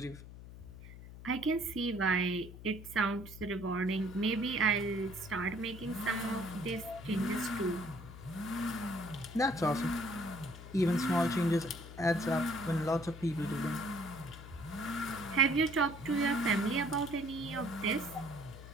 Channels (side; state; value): left; noise; hum, 14 dB below the sound